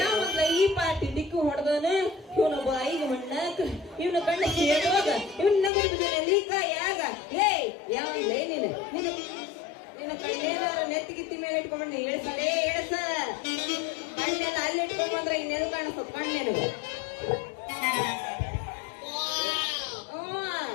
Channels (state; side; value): drops out; right; at 5.7 s